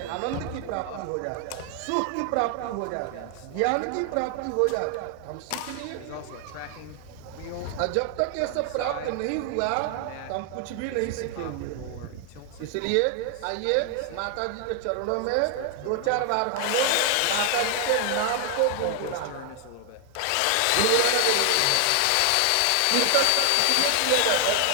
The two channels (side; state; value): both; different; correlation 0.00